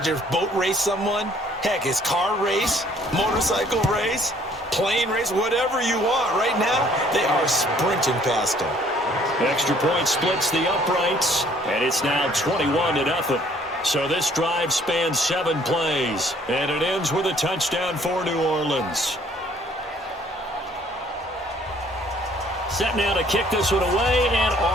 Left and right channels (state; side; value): normal; both; correlation 0.60